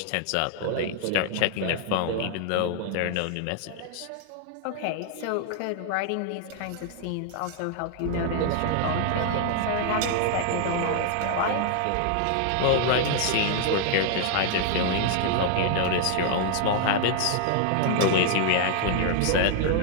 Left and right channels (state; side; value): different; both; correlation 0.00